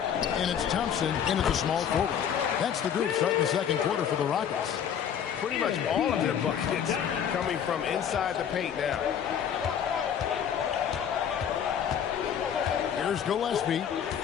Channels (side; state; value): right; quieter; 8.6 dB